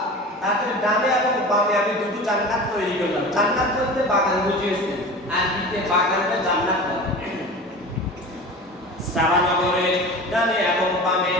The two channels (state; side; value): normal; both; correlation 0.35